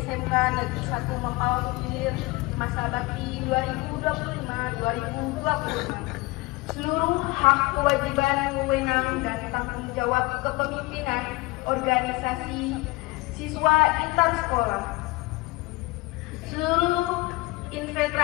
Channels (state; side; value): quieter; right; 22.4 dB